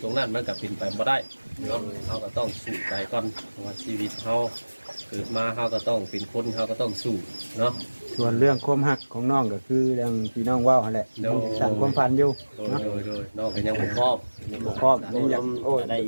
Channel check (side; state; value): both; inverted; correlation -1.00